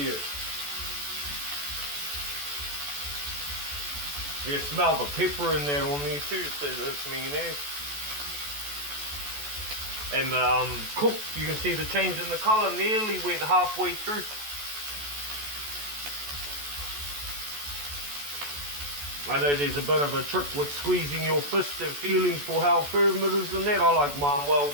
You smell the pepper in there on there too, so that's mayonnaise. And cooked, you can see the change in the colour, nearly went halfway through. I know there's a bit of a trick with squeezing your fist and feeling for how firm it is and that. I like mine well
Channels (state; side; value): late; left; 14 ms